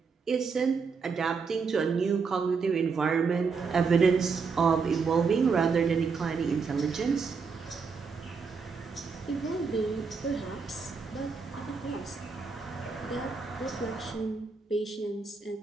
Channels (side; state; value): left; quieter; 5.1 dB